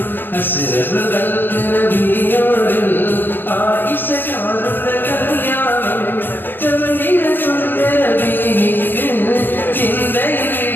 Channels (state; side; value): late; right; 0.096 ms